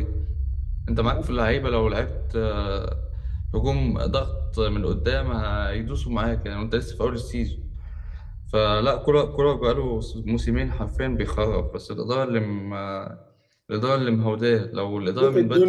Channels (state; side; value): identical; both; correlation 1.00